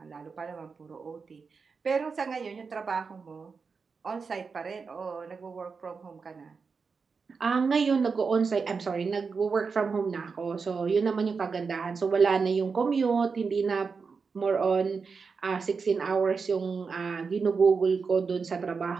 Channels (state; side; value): quieter; left; 5.1 dB